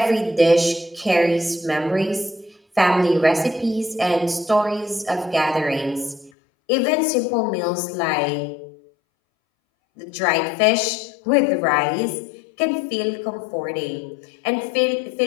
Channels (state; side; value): drops out; right; at 6.3 s